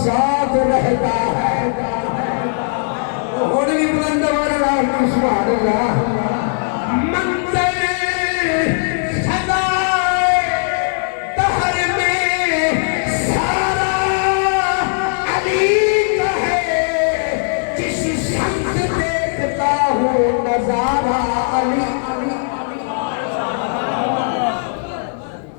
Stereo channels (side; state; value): right; silent; 55 dB below the other